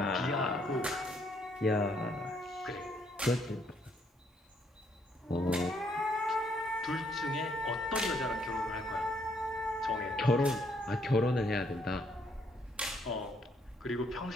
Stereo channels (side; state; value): both; normal; correlation 0.70